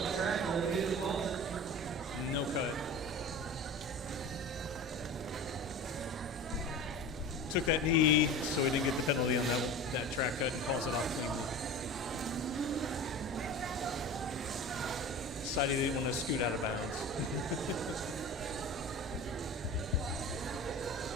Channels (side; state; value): both; normal; correlation 0.34